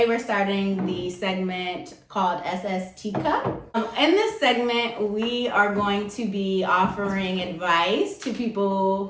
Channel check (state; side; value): identical; both; correlation 1.00